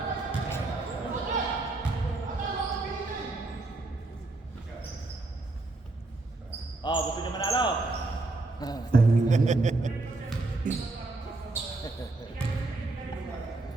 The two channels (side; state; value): left; quieter; 3.1 dB